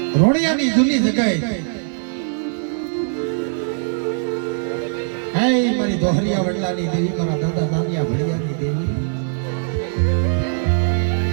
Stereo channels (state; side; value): silent; left; 65 dB below the other